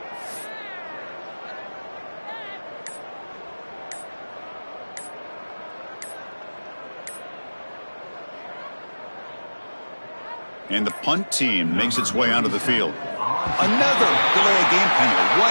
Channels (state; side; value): inverted; both; correlation -1.00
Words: And the punt team makes its way onto the field. Another delay of game penalty.